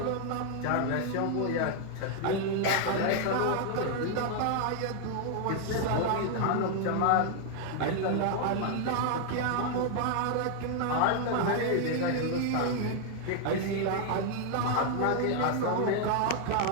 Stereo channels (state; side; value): different; both; correlation 0.00